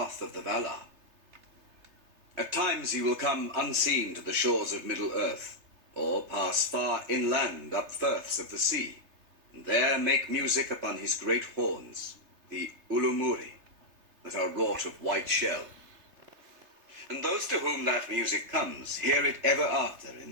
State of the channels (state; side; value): late; left; 3.3 ms